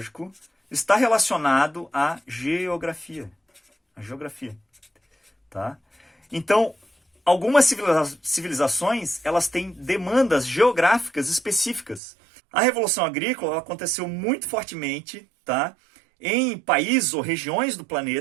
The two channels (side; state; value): left; drops out; at 12.0 s